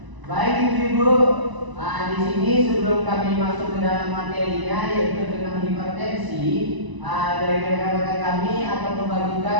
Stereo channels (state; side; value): late; left; 1.0 ms